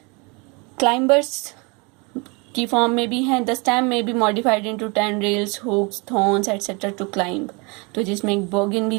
क्लाइंबर्स की फॉर्म में भी हैं। द स्टेम में be modified into tendrils, hooks, thorns etcetera to climb. तो जिसमें एक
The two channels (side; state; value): left; quieter; 29.8 dB